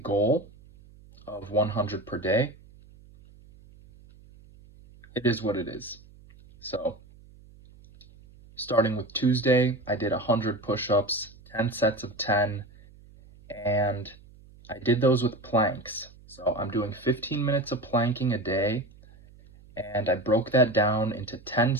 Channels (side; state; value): right; noise; hum, 24 dB below the sound